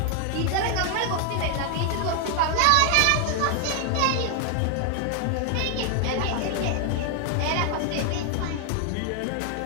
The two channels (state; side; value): different; both; correlation 0.00